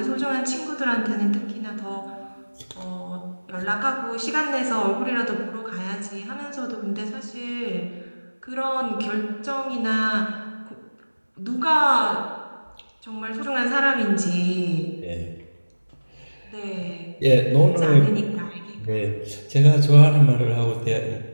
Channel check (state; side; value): inverted; both; correlation -1.00